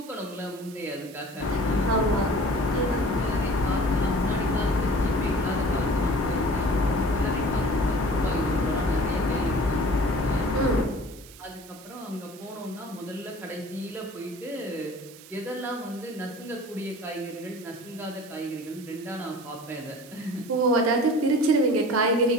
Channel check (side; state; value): right; noise; hiss, 19 dB below the sound